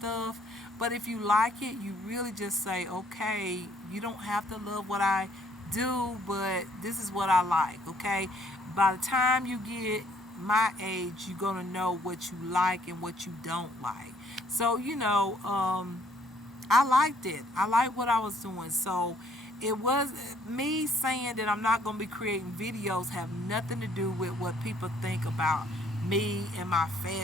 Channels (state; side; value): normal; both; correlation 0.64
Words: But if you like it, you really just say, okay, you don't have to love what I do, but this is what I like. Okay, by the time you get my age, you're gonna know what you like and what you don't like. So I liked it. I liked what I was doing. So it was me saying that I'm not gonna be creating videos have nothing to do with what people think about me and my